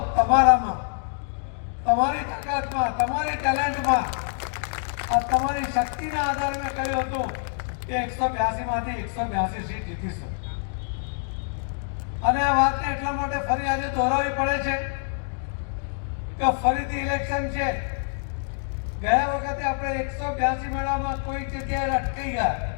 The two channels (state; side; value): silent; right; 61 dB below the other